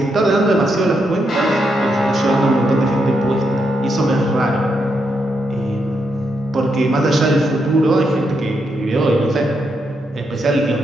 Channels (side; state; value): both; normal; correlation 0.81